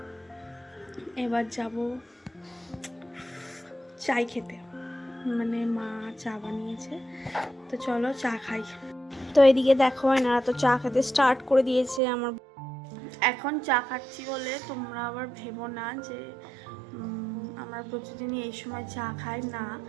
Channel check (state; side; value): drops out; left; at 12.0 s